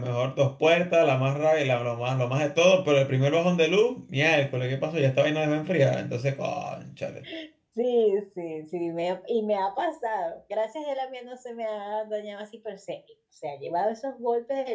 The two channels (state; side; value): identical; both; correlation 1.00